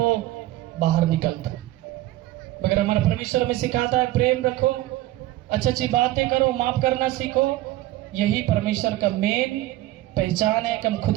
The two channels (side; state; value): left; quieter; 16.2 dB